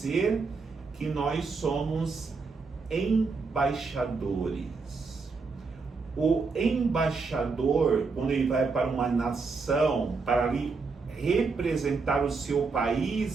que nós somos embaixadores. O embaixador, quando ele vai para uma nação, para ali representar o seu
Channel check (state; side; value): quieter; left; 4.5 dB